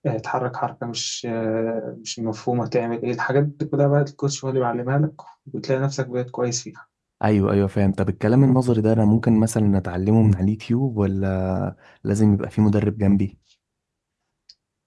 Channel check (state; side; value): identical; both; correlation 1.00